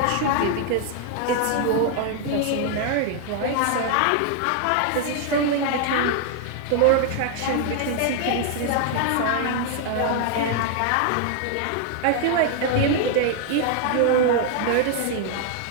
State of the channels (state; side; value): different; both; correlation 0.00